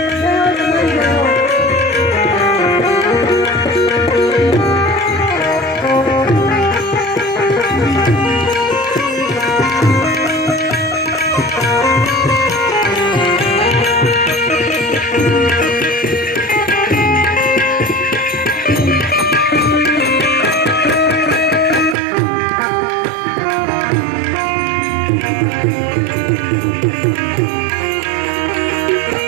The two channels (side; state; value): left; drops out; at 22.0 s